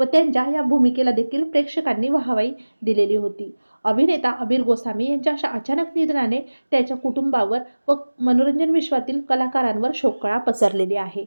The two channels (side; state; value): both; inverted; correlation -1.00